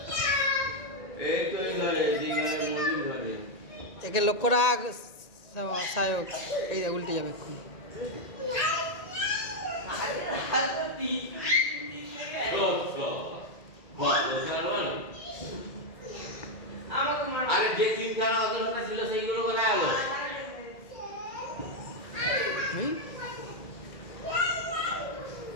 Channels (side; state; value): right; late; 1.8 ms